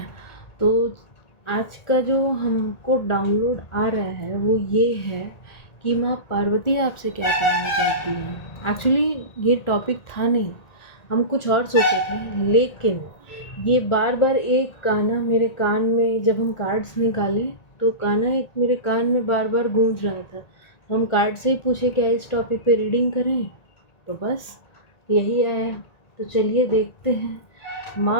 तो आज का जो हमको डाउनलोड आ रहा है वो ये है कि माँ पार्वती आपसे क्या कहना चाहती हैं। एक्चुअली ये टॉपिक था नहीं, हम कुछ और सोचे थे, लेकिन ये बार बार एक गाना मेरे कान में, जब हम कार्ड्स निकाले तो गाना एक मेरे कान में बार बार गूंज रहा था। तो हम कार्ड से ही पूछे क्या इस टॉपिक पे रीडिंग करें, तो बस यही आया। तो चलिए देखते हैं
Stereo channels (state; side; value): late; right; 1.8 ms